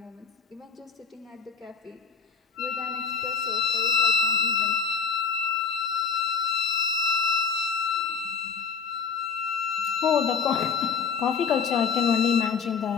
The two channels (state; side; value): quieter; right; 6.0 dB